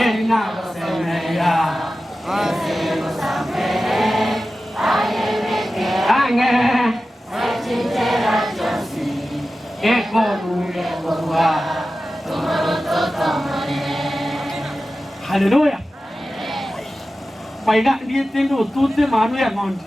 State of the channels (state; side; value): normal; both; correlation 0.94